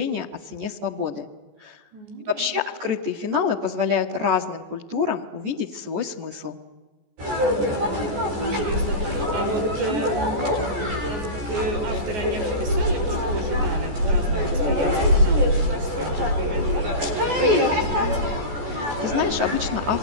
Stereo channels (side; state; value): left; late; 14 ms